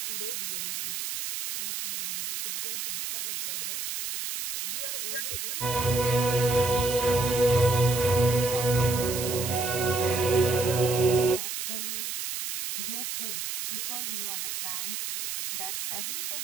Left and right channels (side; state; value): right; noise; hiss, 4 dB below the sound